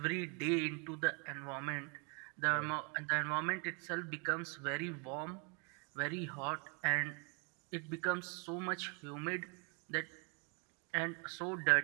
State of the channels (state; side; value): quieter; left; 34.4 dB